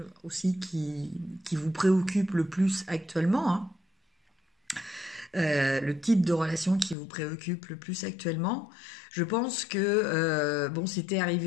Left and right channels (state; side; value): drops out; right; at 7.0 s